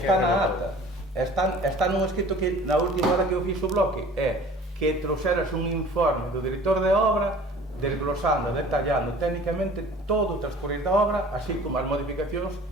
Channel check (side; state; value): both; normal; correlation 0.46